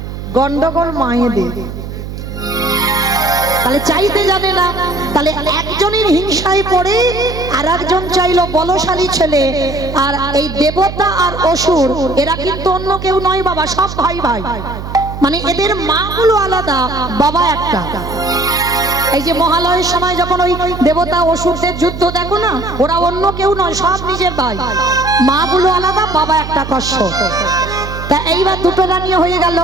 গন্ডগোল মায়েদের। তাহলে চাইতে জানে না, তাহলে একজনের হিংসায় পড়ে আর একজন চাইলো বলশালী ছেলে। আর এই দেবতা আর অসুর এরা কিন্তু অন্য কেউ নয় বাবা, সব ভাই ভাই, মানে এদের মা গুলো আলাদা, বাবা একটা। এই যে মহালয়ের সময় যখন ওই দেবতা অসুরদের যুদ্ধ দেখো না, ওরা অন্য কেউ নয়, সব নিজের ভাই, মা গুলো আলাদা, বাবা একটা কশ্যপ। তা এইবার দুটো রানী হয়ে গেল।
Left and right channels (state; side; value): noise; right; hum, 9 dB below the sound